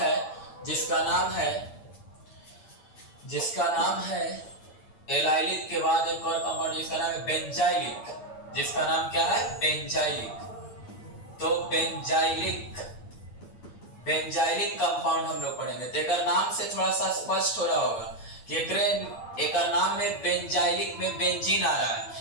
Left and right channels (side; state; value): right; late; 8.7 ms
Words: जिसका नाम है एलाइलिक के बाद एक और कंपाउंड जिसका नाम है बेंजाइलिक, जिसका नाम क्या है, बेंजाइलिक। तो बेंजाइलिक कंपाउंड हम लोग पढ़ेंगे। तो एक नाम से थोड़ा सा स्पष्ट हो रहा होगा कि एक नाम में बेंजाइलिक में बेंजीन आ रहा